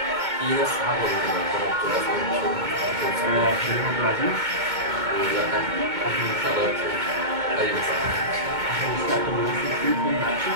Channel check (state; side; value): late; left; 2.2 ms